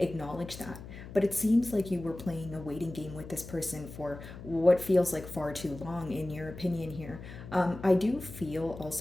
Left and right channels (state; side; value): noise; left; hum, 13 dB below the sound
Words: that. But it seems like you were playing a waiting game with this person for what feels like far too long, in your opinion here. I do feel